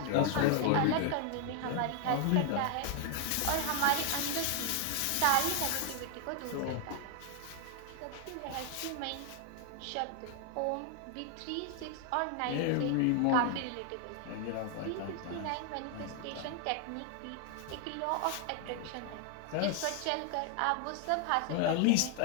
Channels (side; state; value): both; different; correlation 0.00